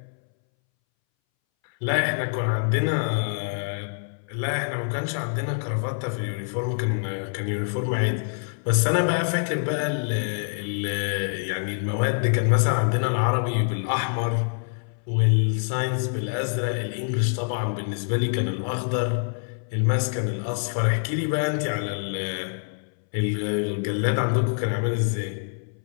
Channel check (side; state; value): right; silent; 61 dB below the other